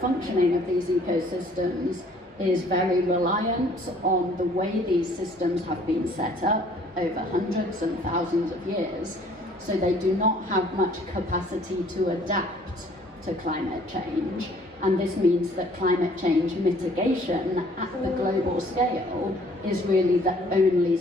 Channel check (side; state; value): both; normal; correlation 0.57